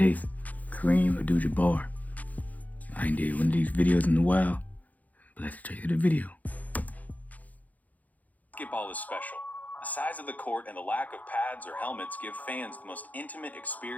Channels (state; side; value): late; right; 0.078 ms